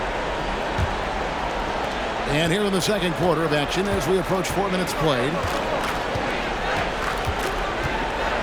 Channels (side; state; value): both; identical; correlation 1.00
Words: And here in the second quarter of action as we approach 4 minutes played.